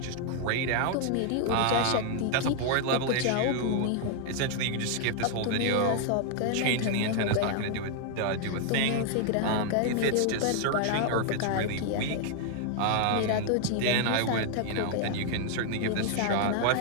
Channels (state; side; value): different; both; correlation 0.00